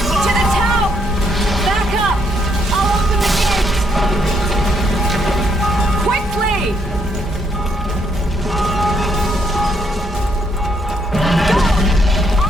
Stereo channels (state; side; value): normal; both; correlation 0.73